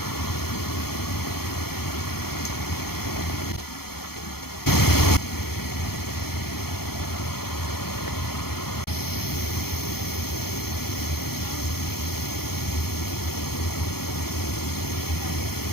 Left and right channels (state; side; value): late; right; 0.95 ms